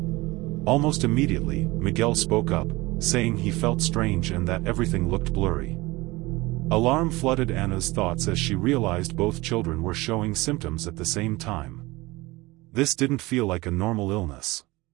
Almost immediately, Miguel spoke up, saying he felt strange and that everything looked blurry. Alarm flooded Ana's thoughts as she realized both children were showing symptoms at the same time. This didn't feel like a normal illness.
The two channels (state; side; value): quieter; left; 21.4 dB